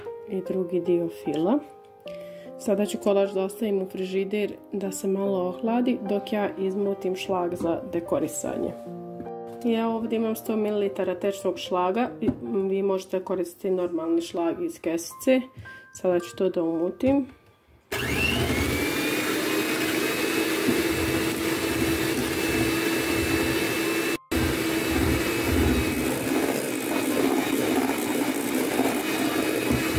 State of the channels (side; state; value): both; identical; correlation 1.00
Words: i drugi dio fila. Sada ću kolač da ostavim u frižider da se malo ohladi dok ja izmutim šlag za dekorisanje. Ja ovdje imam 100 ml tečnog šlaga, vi možete koristiti normalni šlag iz kesice. Sada ću to da umutim.